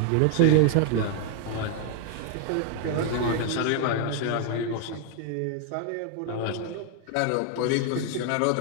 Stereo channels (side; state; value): both; different; correlation 0.00